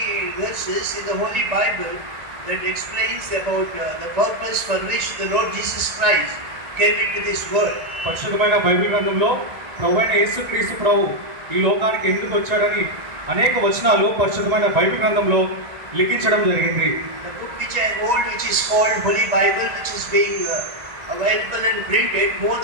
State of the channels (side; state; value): left; late; 1.9 ms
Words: verses in the Holy Bible that explains about the purpose for which the Lord Jesus Christ came into this world. పరిశుద్ధమైన బైబిల్ గ్రంథంలో ప్రభువైన యేసుక్రీస్తు ప్రభు ఈ లోకానికి ఎందుకు వచ్చాడని అనేక వచనాలు పరిశుద్ధమైన బైబిల్ గ్రంథంలో లిఖించడం జరిగింది. The book which I hold, which is called Holy Bible, which is being available and printed more